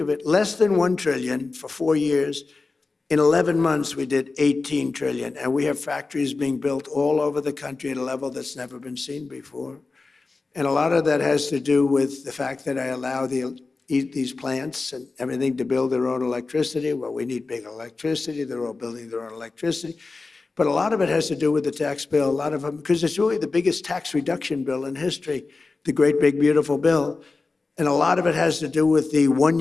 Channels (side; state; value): right; quieter; 3.8 dB